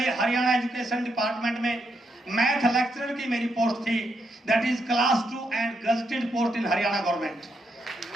हरियाणा एजुकेशन डिपार्टमेंट में मैथ लेक्चरर की मेरी पोस्ट थी, that is class 2 and gazetted post in Haryana government.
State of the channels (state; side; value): normal; both; correlation 0.79